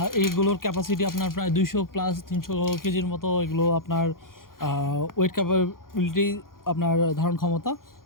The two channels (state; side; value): late; right; 0.91 ms